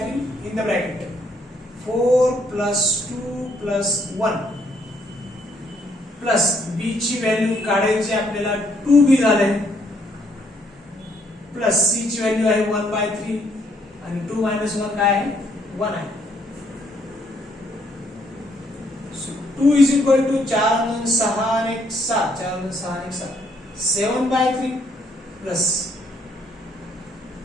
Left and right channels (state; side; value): normal; both; correlation 0.69